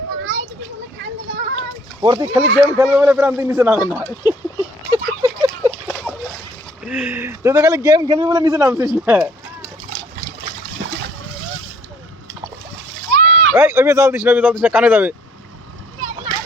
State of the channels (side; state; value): both; normal; correlation 0.58